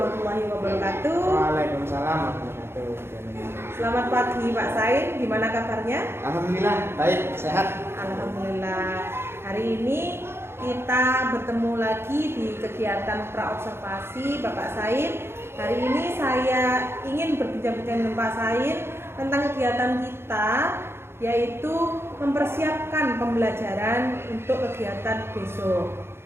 wabarakatuh. Waalaikumsalam warahmatullahi wabarakatuh. Selamat pagi Pak Sain, gimana kabarnya? Alhamdulillah, baik, sehat. Alhamdulillah. Hari ini kita bertemu lagi di kegiatan praobservasi Bapak Sain. Hari ini saya ingin berbincang-bincang dengan Pak Sain tentang kegiatan kita, yaitu mempersiapkan pembelajaran untuk kegiatan besok.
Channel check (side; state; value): left; late; 0.12 ms